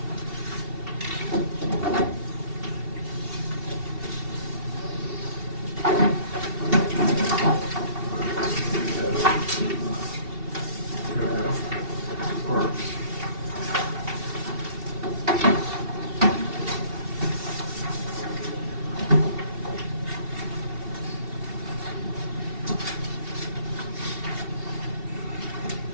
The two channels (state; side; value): late; left; 2.8 ms